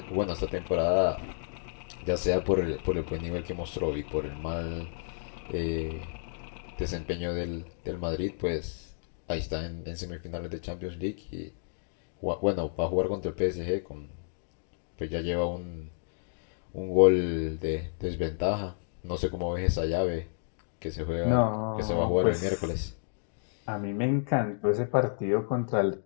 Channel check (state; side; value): silent; right; digital silence